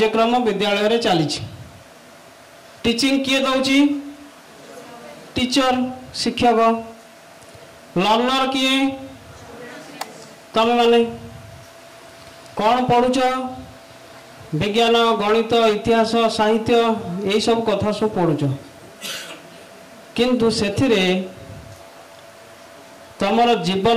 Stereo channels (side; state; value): both; identical; correlation 1.00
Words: विद्यालय रे चली टीचिंग किए दौची टीचर शिक्षक लर्नर किए तमे माने कौन पढ़ुच विज्ञान गणित इतिहास साहित्य यही सब कथा सब पढ़ुच किंतु सेथिरे तमर